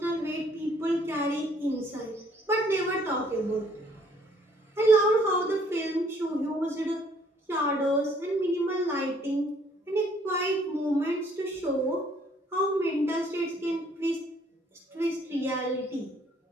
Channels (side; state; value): both; normal; correlation 0.63